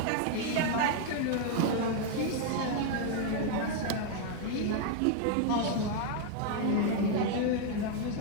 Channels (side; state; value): both; different; correlation 0.00